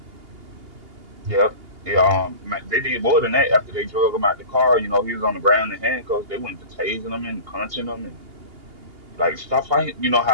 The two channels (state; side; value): late; left; 2.8 ms